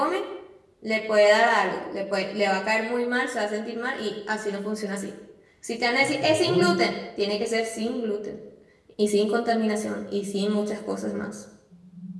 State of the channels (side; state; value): both; identical; correlation 1.00